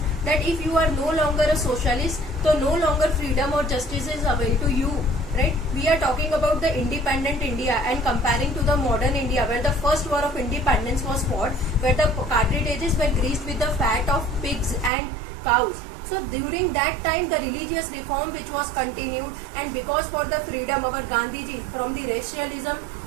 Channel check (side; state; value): left; drops out; at 14.9 s